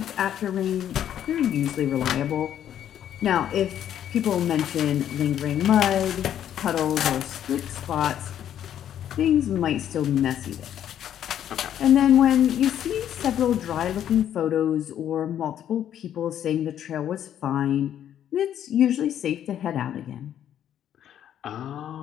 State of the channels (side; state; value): right; quieter; 10.3 dB